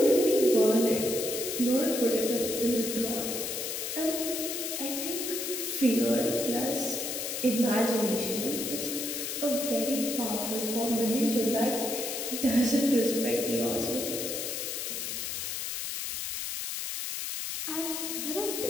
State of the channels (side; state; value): left; noise; hiss, 3 dB below the sound